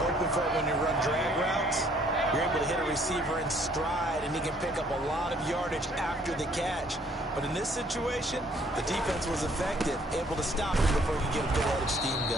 hoping for when you run drag routes, you're able to hit a receiver in stride, and he can pick up a lot of yardage after the catch. But in this situation, the defense was effective, able to stop him before he could get a good head of steam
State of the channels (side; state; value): both; normal; correlation 0.62